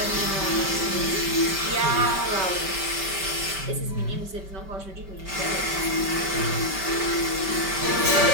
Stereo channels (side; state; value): left; late; 5.1 ms